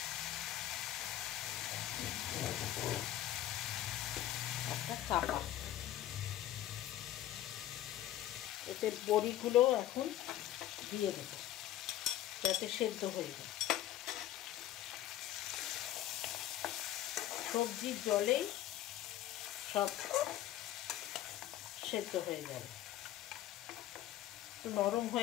একটা চাপা। এতে বড়িগুলো এখন দিয়ে দেবো যাতে সেদ্ধ হয়ে যায়। সবজির জলেই সব সেদ্ধ হয়ে যাবে। একটু নরম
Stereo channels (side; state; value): right; quieter; 13.0 dB